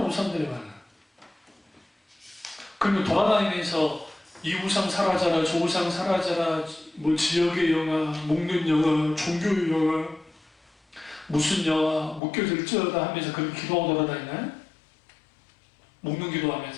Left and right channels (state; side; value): drops out; right; at 12.2 s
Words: 우상들이 많아. 그리고 돌아다니면서 이 우상 사라져라, 저 우상 사라져라, 뭐 지역의 영화, 묶는 영화, 종교의 영화, 무슨 영화, 묶여질지어다 하면서 그렇게 기도하고 돌아다니나요? 묶는